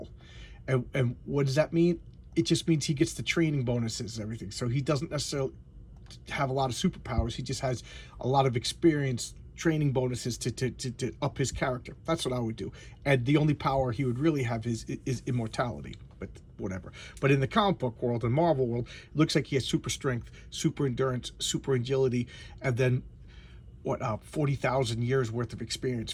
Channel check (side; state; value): both; identical; correlation 1.00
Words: And what does that mean? It just means he gets the training bonuses and everything. So he doesn't necessarily have a lot of superpowers. He just has a lot of experience, training bonuses to up his character. That's what I would do. And the only power he would really have is immortality, but whatever. But in the comic book world and Marvel world, it looks like he has super strength, super endurance, super agility, and then 40,000 years worth of experience,